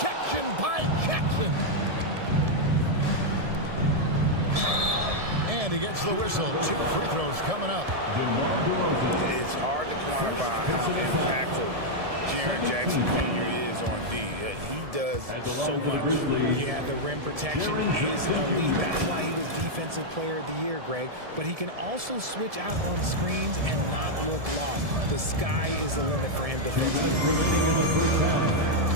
by Jackson. And he gets the whistle. 2 free throws coming up. It's hard to quantify how impactful Jaren Jackson Jr. is on D. He does so much. Yeah, the rim protection is elite. That's why he was Defensive Player of the Year, Greg. But he can also switch out on screens and not look lost. The sky is the limit for him defensively.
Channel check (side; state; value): left; late; 1.7 ms